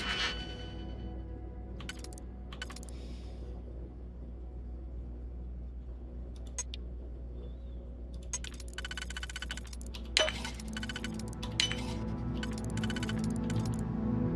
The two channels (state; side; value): identical; both; correlation 1.00